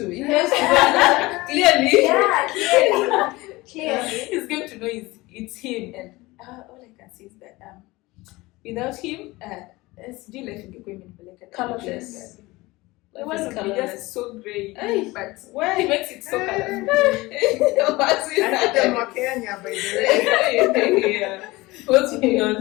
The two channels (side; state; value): right; quieter; 21.0 dB